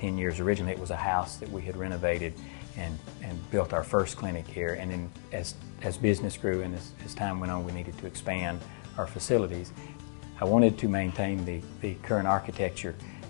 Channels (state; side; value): silent; right; digital silence